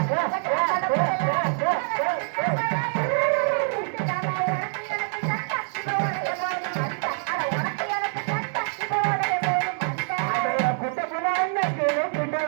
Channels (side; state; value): left; silent; digital silence